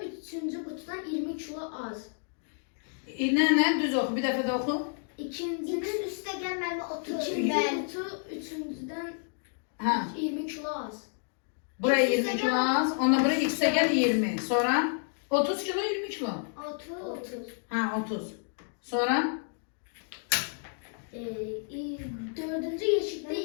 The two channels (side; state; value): right; silent; 58 dB below the other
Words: üçüncü kutudan 20 kilo az. Ne? Düz oku. Bir dəfə də oku. İkincinin üstte gelmeli 30. İkinci kutu üçüncüden Ha. 20 kilo az. Buraya 20 kilo az. Ona buraya x'e gel 20. Sonra 30 kilo 20 kilo. 30. Ha 30. Sonra? Dördüncü yeşikte